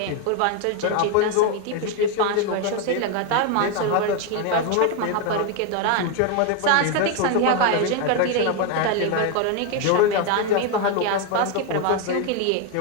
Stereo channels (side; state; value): both; different; correlation 0.01